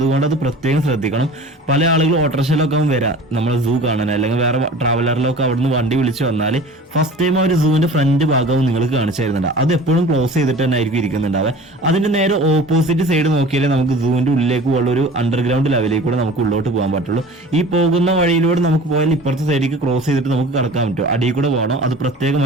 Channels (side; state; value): both; normal; correlation 0.41